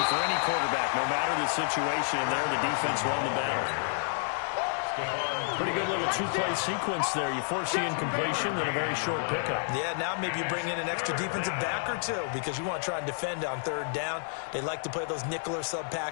for any quarterback, no matter the situation, and there the defense won the battle. Pretty good little 2-play sequence there. You force the incompletion, then a very short pickup. Yeah, now maybe you bring in an extra defensive back or 2 because you want to try and defend on 3rd down. They like to play those nickel or sub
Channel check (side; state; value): right; silent; digital silence